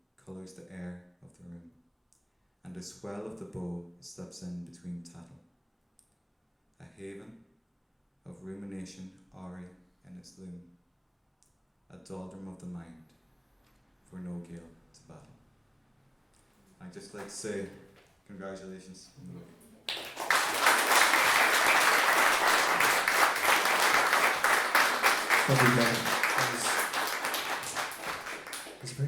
colours the air of the room, and a swell of the bow slips in between tattle. A haven of rumination awry in its loom, a doldrum of the mind, for no gale to battle. I'd just like to say congratulations on the book. Lovely, Kevin. It's a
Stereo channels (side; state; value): both; identical; correlation 1.00